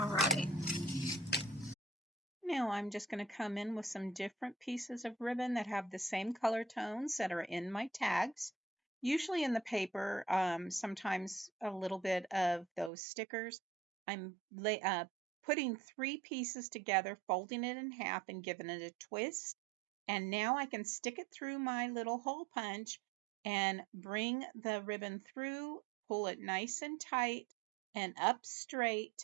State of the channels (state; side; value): drops out; left; at 12.9 s